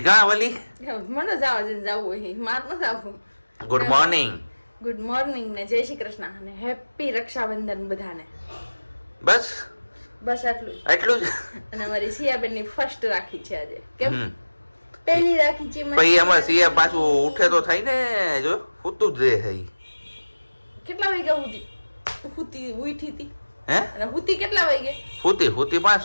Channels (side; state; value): both; inverted; correlation -1.00